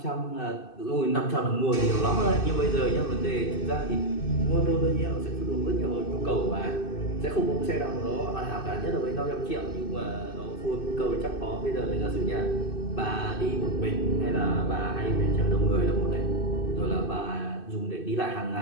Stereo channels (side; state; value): right; late; 2.6 ms